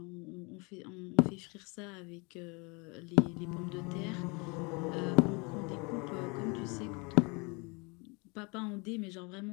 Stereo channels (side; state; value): right; quieter; 30.1 dB